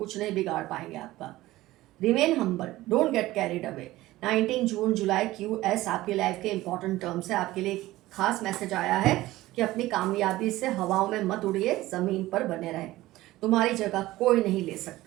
नहीं बिगाड़ पाएंगे आपका। Remain humble, don't get carried away. 19 June July QS आपकी लाइफ के इंपॉर्टेंट टर्म्स है। आपके लिए खास मैसेज आया है कि अपनी कामयाबी से हवाओं में मत उड़िए, जमीन पर बने रहें। तुम्हारी जगह कोई नहीं ले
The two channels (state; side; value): quieter; left; 17.1 dB